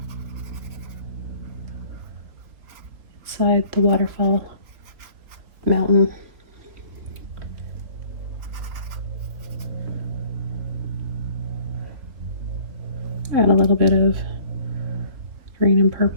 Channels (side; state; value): left; late; 3.6 ms